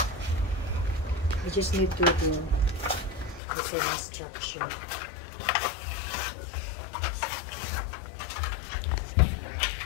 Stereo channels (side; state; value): right; drops out; at 3.4 s